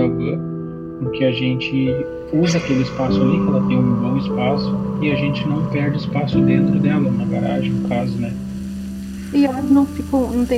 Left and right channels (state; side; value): identical; both; correlation 1.00